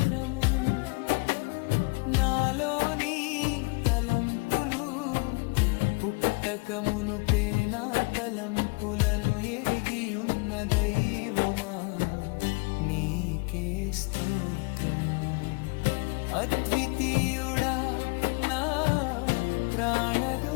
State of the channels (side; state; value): right; quieter; 30.8 dB